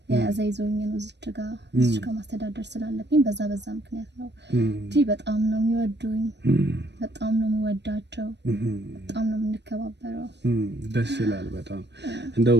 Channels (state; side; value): late; left; 0.50 ms